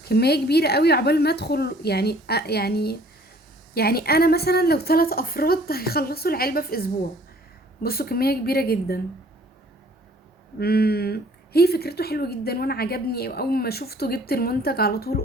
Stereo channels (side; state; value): both; normal; correlation 0.55